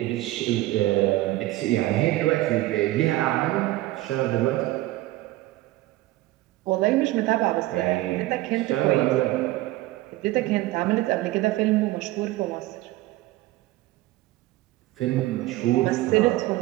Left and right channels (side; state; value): left; quieter; 17.5 dB